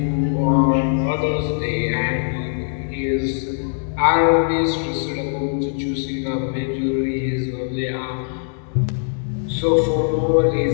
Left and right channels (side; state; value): right; silent; 65 dB below the other